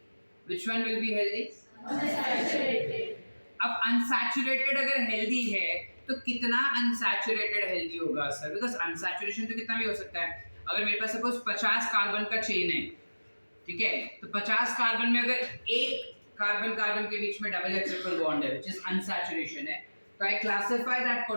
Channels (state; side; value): inverted; both; correlation -1.00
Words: Which one will be healthy? Unsaturated. अब अनसैचुरेटेड अगर हेल्दी है तो कितना अनसैचुरेटेड हेल्दी होगा सर? बिकॉज अनसैचुरेशन तो कितना भी हो सकता है। अगर मेरे पास सपोज 50 कार्बन का चेन है, ठीक है, तो 50 कार्बन में अगर एक कार्बन कार्बन के बीच में डबल या ट्रिपल बॉन्ड है which is unsaturation है, तो I classify that